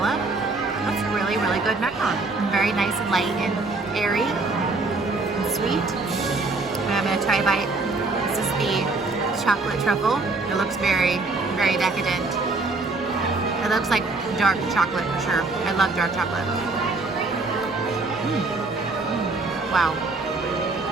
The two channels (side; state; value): left; quieter; 3.5 dB